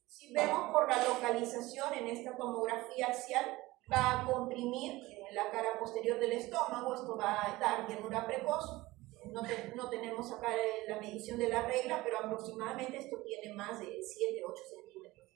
si vemos por la localización en esta tomografía axial, va a comprimir la cara posterior del estómago, esto va a dar llenura precoz. No tenemos acá la medición de la regla, pero aproximadamente esto tiene más de 7-8 centímetros.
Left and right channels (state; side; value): quieter; left; 19.4 dB